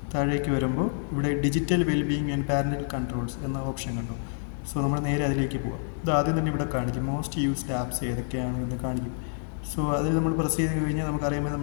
താഴേക്ക് വരുമ്പോൾ ഇവിടെ digital wellbeing and parental controls എന്ന ഓപ്ഷൻ കണ്ടു. സോ നമ്മൾ നേരെ അതിലേക്ക് പോകാം. ഇത് ആദ്യം തന്നെ ഇവിടെ കാണിക്കും മോസ്റ്റ് യൂസ്ഡ് ആപ്സ് ഏതൊക്കെയാണെന്ന് കാണിക്കും. സോ അതിൽ നമ്മൾ പ്രസ് ചെയ്ത് കഴിഞ്ഞാൽ നമുക്കറിയാമോ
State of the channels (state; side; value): silent; right; digital silence